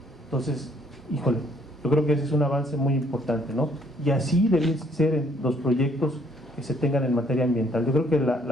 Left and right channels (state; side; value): normal; both; correlation 0.64